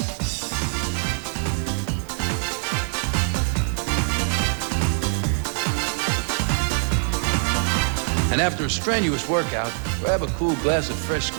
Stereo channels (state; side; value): silent; left; 63 dB below the other